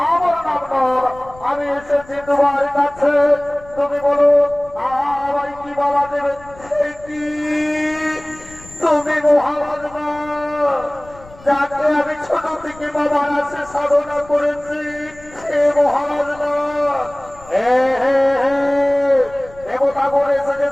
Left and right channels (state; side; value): noise; left; rumble, 22 dB below the sound